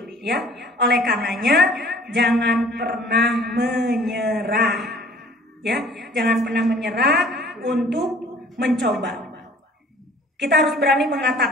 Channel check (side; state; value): both; normal; correlation 0.52